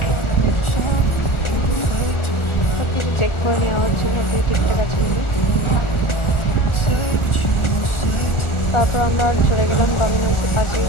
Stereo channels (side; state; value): right; late; 1.4 ms